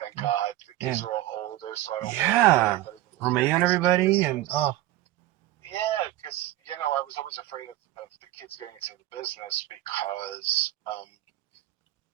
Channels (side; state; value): left; quieter; 15.2 dB